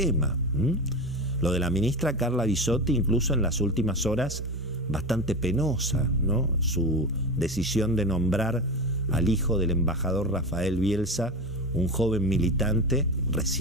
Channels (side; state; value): both; normal; correlation 0.23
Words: Lo de la ministra Carla Bisotti, incluso en las últimas horas, bastante penosa, ¿no? Su decisión de nombrar al hijo del embajador Rafael Bielsa, un joven militante